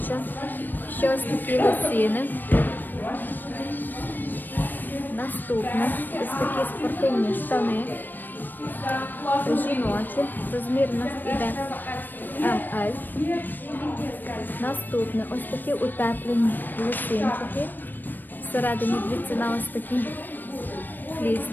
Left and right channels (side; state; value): right; late; 0.091 ms